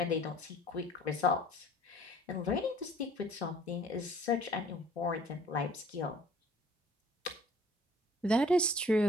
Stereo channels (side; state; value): both; normal; correlation 0.54